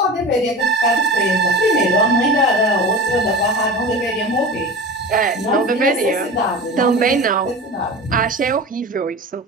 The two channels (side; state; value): both; normal; correlation 0.31